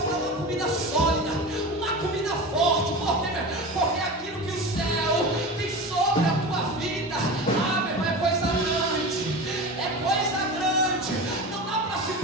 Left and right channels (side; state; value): both; normal; correlation 0.29